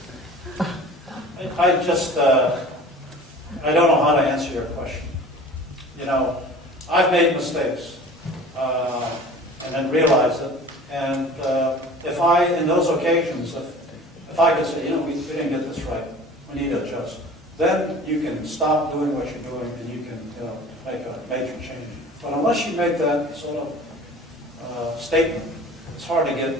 I just, I don't know how to answer your question. You know, I've made mistakes and then realized it. And if I, in those occasions, if I could say, you know, we didn't get this right, we need to adjust, then you can stop doing what you're doing and you can, you know, make a major change. But unless you make that sort of statement, it's hard to get,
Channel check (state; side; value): normal; both; correlation 0.43